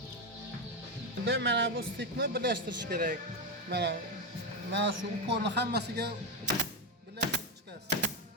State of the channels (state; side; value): normal; both; correlation 0.09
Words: Mana bu stikni birlashtirish kerak. Mana shu upolni hammasiga birlashtirib chiqasiz.